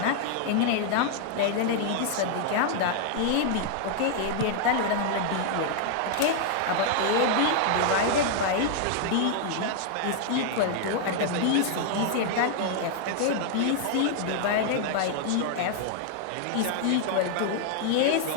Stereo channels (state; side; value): different; both; correlation -0.01